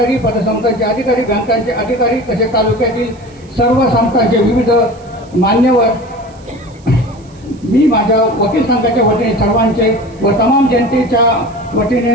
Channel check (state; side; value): noise; right; hiss, 30 dB below the sound